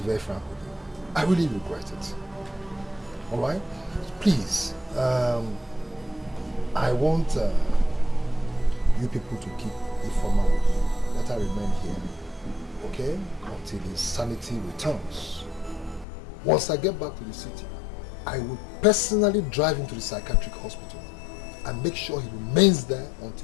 very frank with you. I really regret it. All right? Please, I want you people to keep Ifeoma with you. Let her remain here, okay? Until his sanity returns. Once I get back to the city, I will personally drive him to the psychiatric hospital and make sure he remains there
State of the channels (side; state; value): right; drops out; at 16.1 s